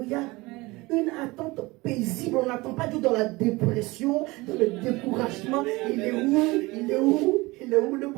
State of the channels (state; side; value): quieter; left; 22.2 dB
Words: Amen. Une attente paisible. On n'attend pas Dieu dans la dépression, dans le découragement. Il est où? Il est où? Il est où le